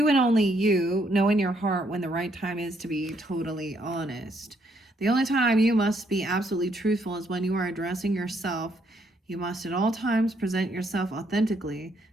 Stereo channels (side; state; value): both; normal; correlation 0.72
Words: and only you know in your heart when the right time is to be totally honest. The only time you must be absolutely truthful is when you are addressing yourself. You must at all times present yourself authentically